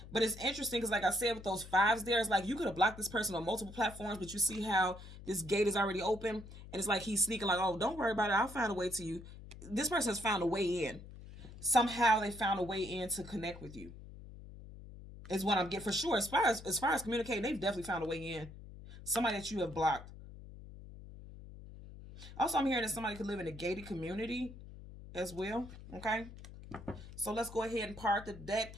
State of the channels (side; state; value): left; noise; hum, 15 dB below the sound